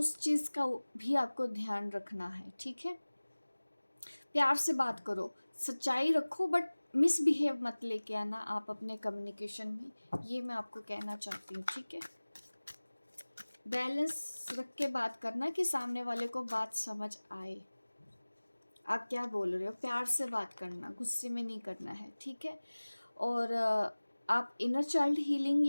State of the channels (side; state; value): both; inverted; correlation -1.00